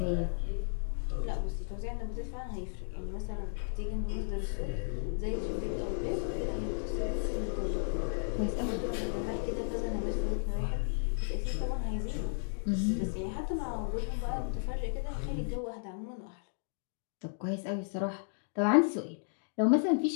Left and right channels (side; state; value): right; silent; digital silence